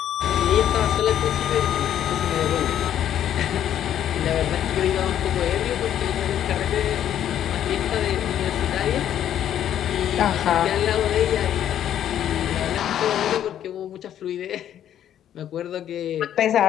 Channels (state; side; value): quieter; right; 10.6 dB